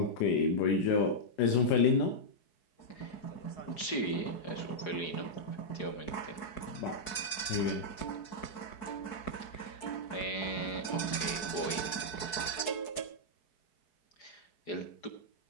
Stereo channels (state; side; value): late; right; 4.7 ms